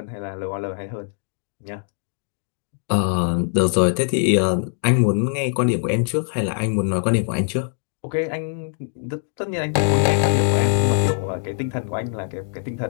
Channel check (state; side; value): silent; right; digital silence